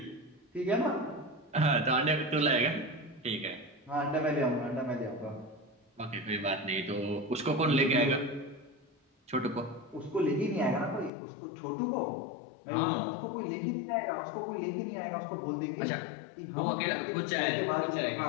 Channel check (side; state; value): right; drops out; at 11.1 s